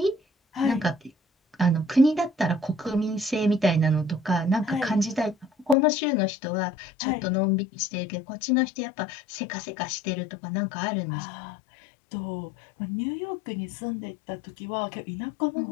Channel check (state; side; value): drops out; right; at 5.8 s